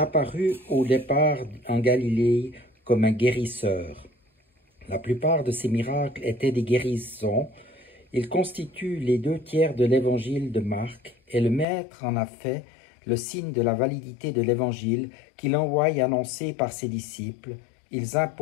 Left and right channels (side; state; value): right; drops out; at 11.7 s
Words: au départ en Galilée comme un guérisseur. La plupart de ses miracles étaient des guérisons. Il constitue les 2/3 de l'évangile de Marc et le Maître en a fait le signe de la validité de l'évangile qu'il envoie annoncer par ses disciples. Ils